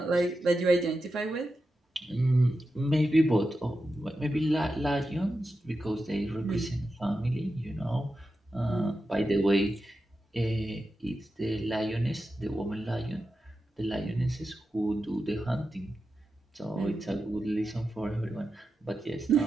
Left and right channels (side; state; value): both; normal; correlation 0.90